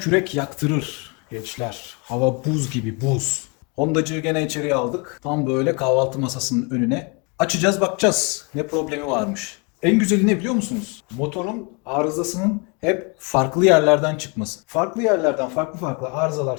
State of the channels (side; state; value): right; quieter; 32.4 dB